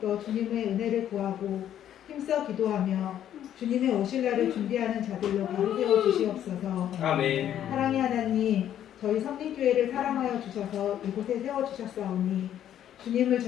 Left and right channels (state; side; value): quieter; right; 10.7 dB